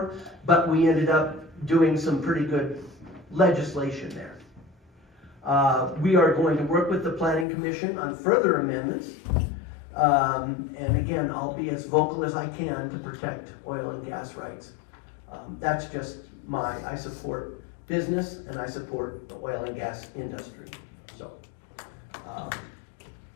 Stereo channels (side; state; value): right; drops out; at 7.5 s